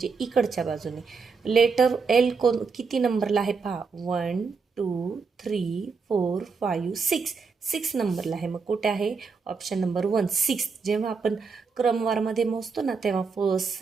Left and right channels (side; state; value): left; quieter; 5.0 dB